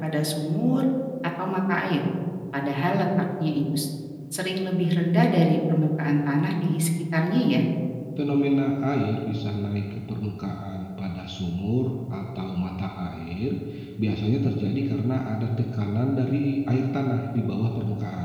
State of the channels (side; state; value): both; identical; correlation 1.00